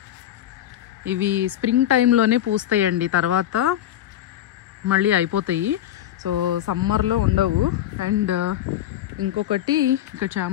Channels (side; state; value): right; quieter; 12.1 dB